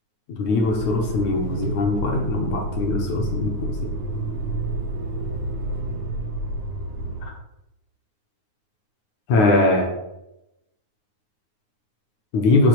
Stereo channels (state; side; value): late; right; 9.5 ms